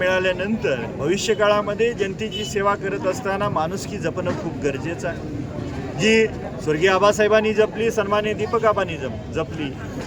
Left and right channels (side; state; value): both; identical; correlation 1.00